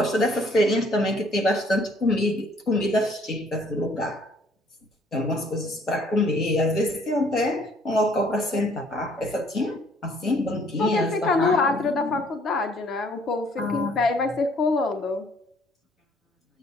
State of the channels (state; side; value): normal; both; correlation 0.61